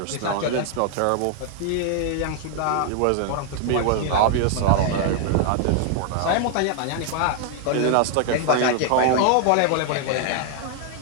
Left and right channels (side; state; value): both; different; correlation 0.00